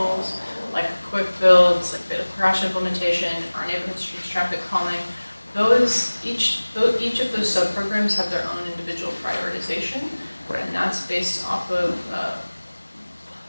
like quick builds, like bit of crash implementation, our neighborhood streets traffic calming. Each of those sub-programs have their own individual prioritization, Right. and that's based off of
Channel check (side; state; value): both; inverted; correlation -1.00